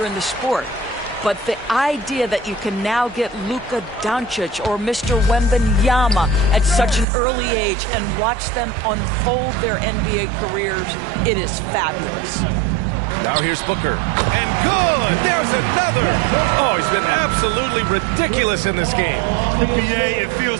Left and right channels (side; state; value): left; drops out; at 7.1 s